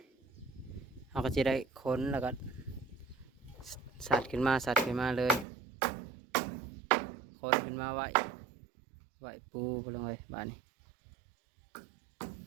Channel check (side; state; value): left; drops out; at 5.5 s